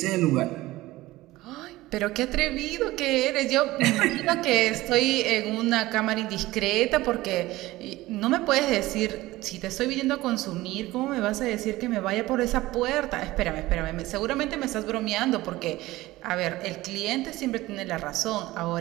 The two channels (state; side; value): quieter; left; 18.0 dB